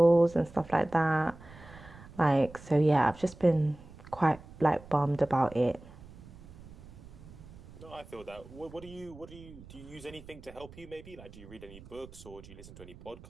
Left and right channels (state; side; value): noise; right; rumble, 18 dB below the sound